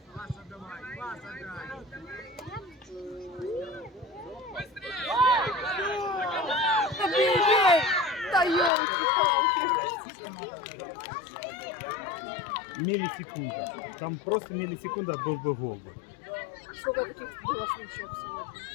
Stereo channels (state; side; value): drops out; right; at 8.7 s